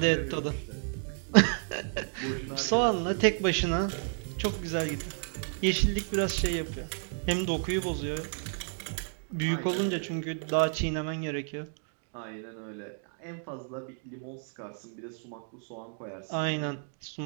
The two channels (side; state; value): left; silent; 57 dB below the other